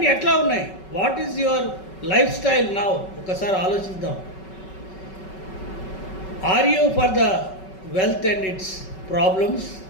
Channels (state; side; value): late; right; 5.3 ms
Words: ఎట్లా ఉన్నాయి? What is your life style now? ఒకసారి ఆలోచిద్దాం. Are you for the wealth and its problems,